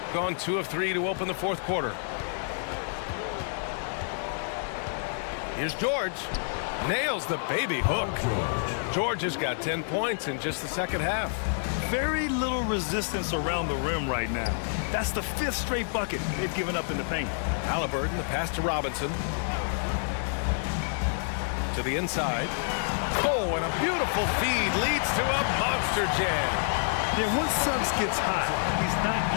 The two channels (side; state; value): right; silent; digital silence